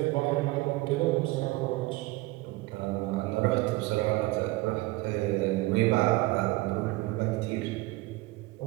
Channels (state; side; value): quieter; left; 20.5 dB